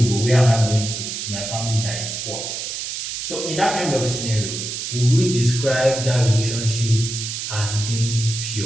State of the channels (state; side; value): noise; right; hiss, 5 dB below the sound